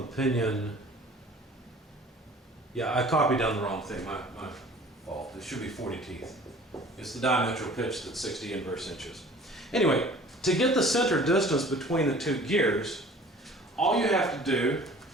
pinion, yeah, I copied down the wrong thing, my fault. It should be 40 teeth. It's the diametral pitch that's 60 inverse inches. Anyway, to get the center distance between the two gears, all you have to do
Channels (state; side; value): normal; both; correlation 0.48